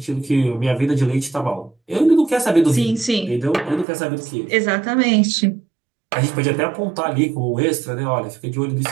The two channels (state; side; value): drops out; left; at 3.9 s